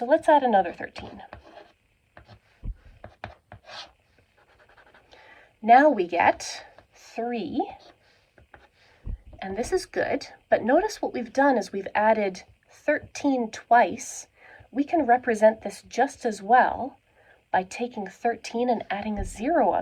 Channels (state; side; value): identical; both; correlation 1.00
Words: let's add another 13. Now we get 3, and this is good, but notice what we've done is we've added 13 twice. We can represent this just as well by taking 13 and adding a 0